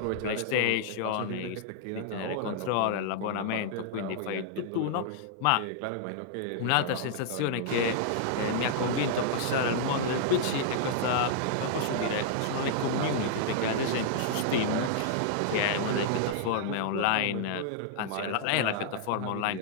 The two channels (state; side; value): different; both; correlation -0.01